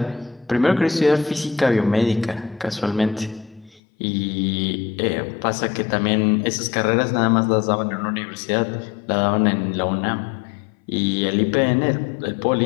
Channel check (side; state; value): right; drops out; at 3.8 s